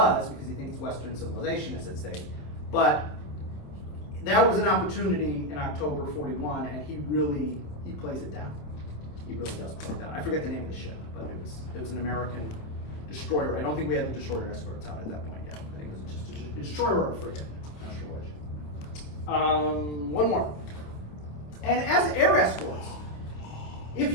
because he thinks Western civilization is at stake, but that was an opportunity in October 41, and he plays it down. He really does play it down. I forget the name of the ship, but it was an American destroyer. I don't think we had the destroyer escorts out at that point yet. I think it was just a destroyer or a frigate. Not sure which. One more. And as air escorts, if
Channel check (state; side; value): late; right; 27 ms